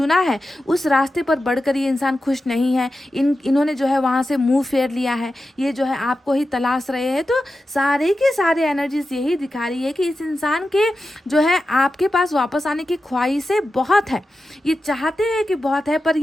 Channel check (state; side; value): normal; both; correlation 0.91